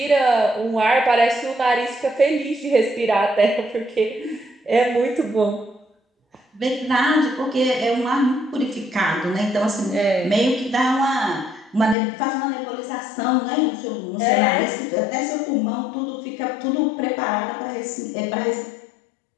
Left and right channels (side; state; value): right; drops out; at 12.0 s